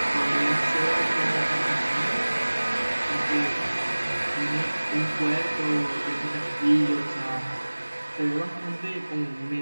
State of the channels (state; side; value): inverted; both; correlation -1.00